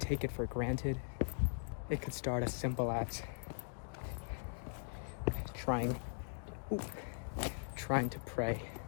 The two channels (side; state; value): right; silent; digital silence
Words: take it for granted. It could start as simple as trying to pray